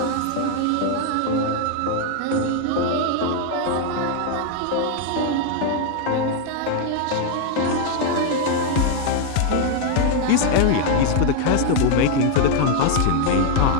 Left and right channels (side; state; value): both; different; correlation 0.00